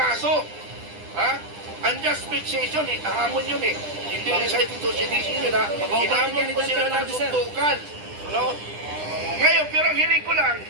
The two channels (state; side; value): late; left; 9.9 ms